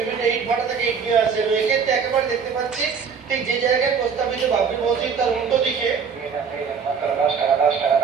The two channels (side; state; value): left; quieter; 6.2 dB